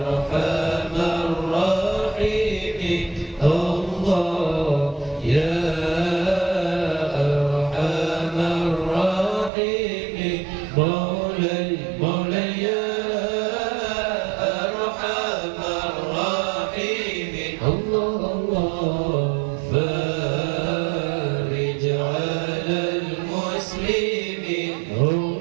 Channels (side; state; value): left; drops out; at 9.5 s